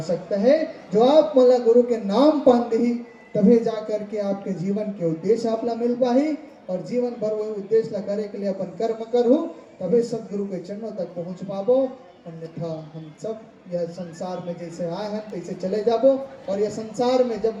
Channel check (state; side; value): identical; both; correlation 1.00